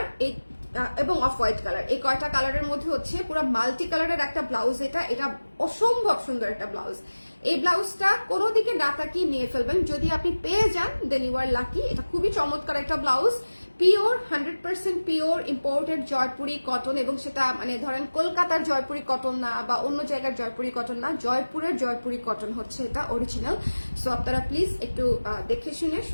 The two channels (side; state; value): both; inverted; correlation -1.00